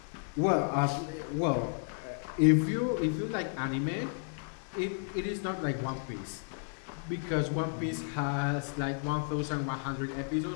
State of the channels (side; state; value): right; silent; 56 dB below the other